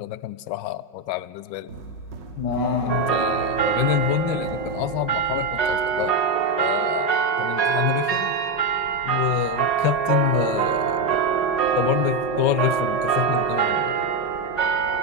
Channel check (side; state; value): right; late; 5.5 ms